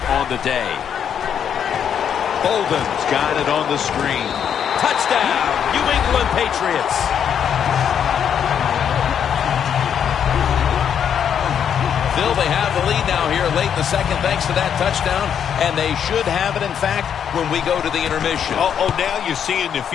on the day. Bolden's got it on the screen. Touchdown, New England Patriots. Phil, they have the lead now here late in the second thanks to that touchdown, and they should have it, in fact, when we go to the intermission. Oh, now you're seeing the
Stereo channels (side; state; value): right; quieter; 8.4 dB